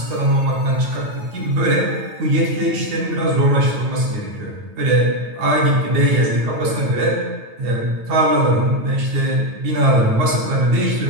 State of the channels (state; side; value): late; left; 9.2 ms